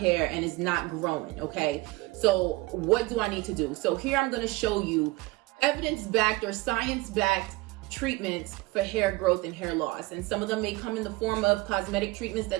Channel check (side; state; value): left; quieter; 21.4 dB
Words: and it's not growing. Okay, so what do I need to do? So here I'm going to show you evidence-backed or science-backed treatments for hair growth and hair loss. And some of them may come in the form of cosmetic treatments